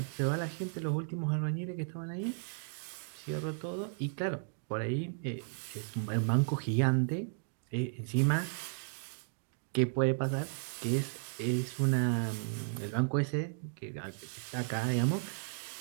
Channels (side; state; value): left; silent; digital silence